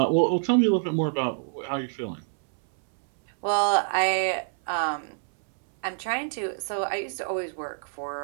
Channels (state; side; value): silent; left; 61 dB below the other